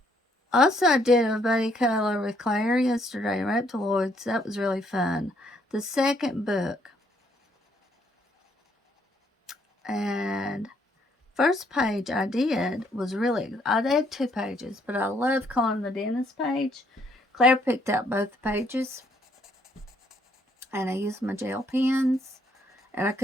Also, I did a buddy color with Claire yesterday, Reptiloids. That was really fun. The second book. And first page I did was I did 2 pages, but I love coloring the dentist page. Claire picked out both the pages, and I used my gel pens, and I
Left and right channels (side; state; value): both; normal; correlation 0.69